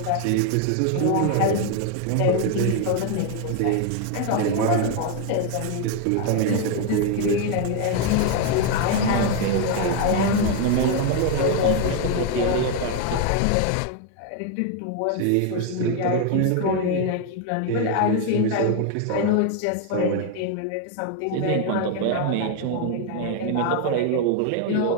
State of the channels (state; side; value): different; both; correlation 0.01